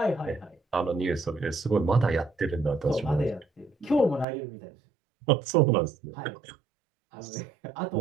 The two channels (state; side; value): drops out; left; at 4.2 s